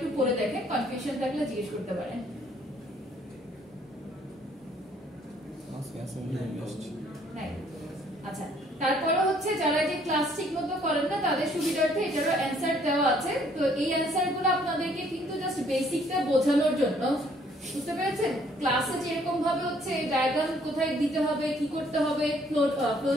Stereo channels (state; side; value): normal; both; correlation 0.63